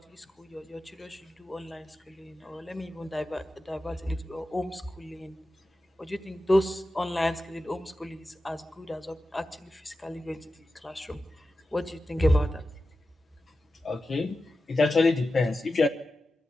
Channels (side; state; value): both; normal; correlation 0.93